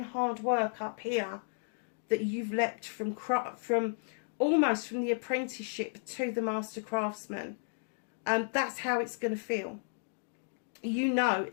hard work up here that you've leapt from almost from the apprenticeship to the Master Craftsman. That's how it's going to feel. You know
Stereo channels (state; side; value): silent; right; digital silence